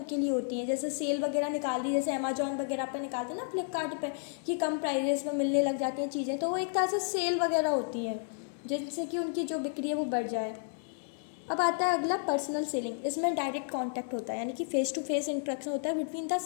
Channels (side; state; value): right; silent; digital silence